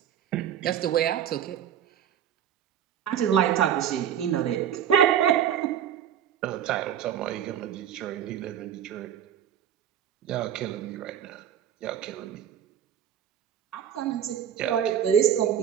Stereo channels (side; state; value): left; quieter; 9.6 dB